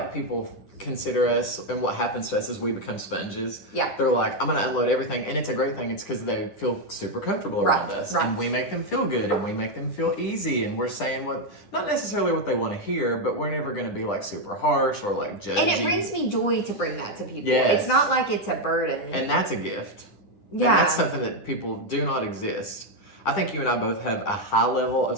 people consider us, and what happens to us is we become sponges. Yeah. They're like, I'm gonna unload everything, and it's a great thing. It's because they feel super comfortable around us, and we make them feel good, and we make them feel easy, and we're saying not necessarily what they want to hear, but we're never gonna be like super harsh or like judgy. And it brings me joy to bring that to people. Yes. It's not like it's a burden. And that's a gift. Yeah. And that's something that people do not exist. I think you and I both have a high level of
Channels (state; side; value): late; right; 10 ms